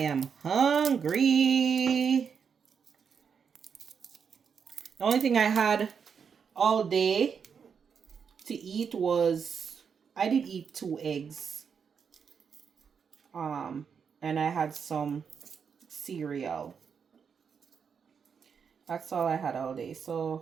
hungry. The only thing I had all day to eat was, I did eat 2 eggs. And I had some cereal. That's all I had all day.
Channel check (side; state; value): left; quieter; 6.6 dB